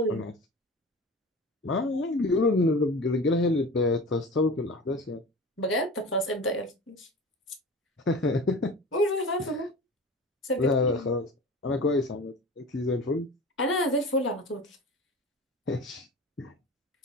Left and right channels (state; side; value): normal; both; correlation 0.35